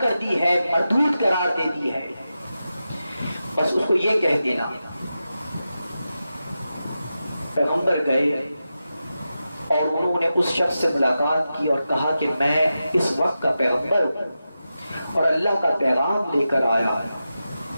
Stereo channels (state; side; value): inverted; both; correlation -0.91